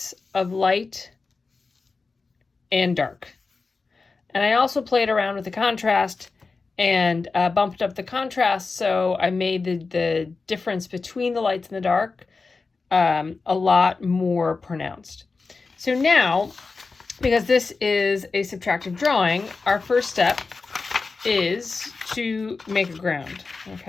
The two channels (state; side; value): quieter; right; 4.2 dB